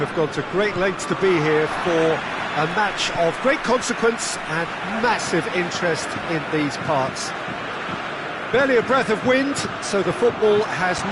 gone to great lengths to be here for a match of great consequence and massive interest in these parts. Barely a breath of wind, so the football has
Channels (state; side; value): identical; both; correlation 1.00